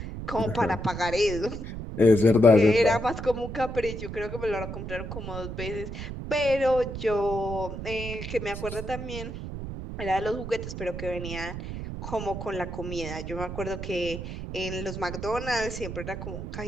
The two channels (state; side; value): noise; right; rumble, 7 dB below the sound